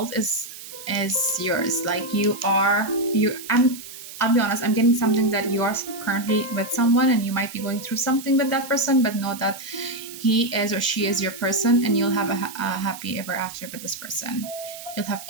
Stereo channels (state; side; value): noise; right; hiss, 14 dB below the sound